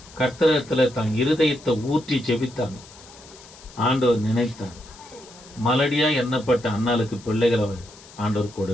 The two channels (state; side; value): noise; left; hiss, 21 dB below the sound